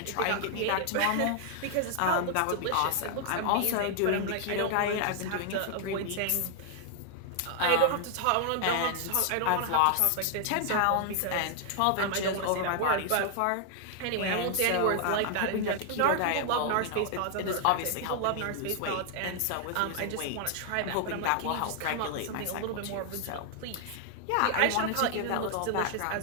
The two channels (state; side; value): different; both; correlation 0.00